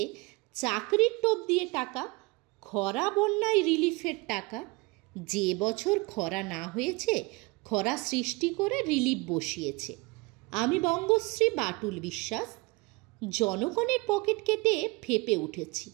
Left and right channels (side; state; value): left; quieter; 25.5 dB